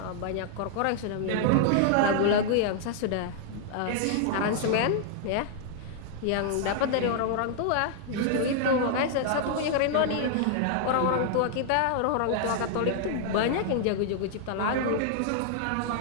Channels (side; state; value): both; different; correlation -0.01